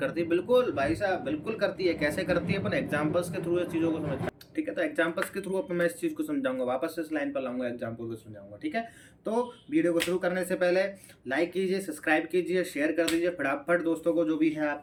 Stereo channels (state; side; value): identical; both; correlation 1.00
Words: है। बिल्कुल भाई साहब, बिल्कुल करती है। कैसे करती है? अपन एग्जांपल्स के थ्रू इस चीज़ों को समझ, ठीक है। तो एग्जांपल्स के थ्रू अपन मैं इस चीज़ को समझाऊंगा, वापस से इस लाइन पर लाऊंगा, एग्जांपल को समझाऊंगा, ठीक है। तो वीडियो को शुरू करने से पहले लाइक कीजिए, सब्सक्राइब कीजिए, शेयर कर दीजिए फटाफट दोस्तों को जो भी है